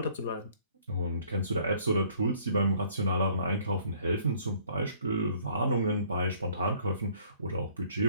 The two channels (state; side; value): inverted; both; correlation -0.59